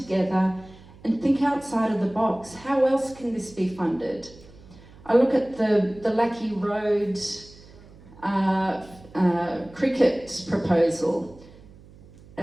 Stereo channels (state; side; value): noise; right; hum, 22 dB below the sound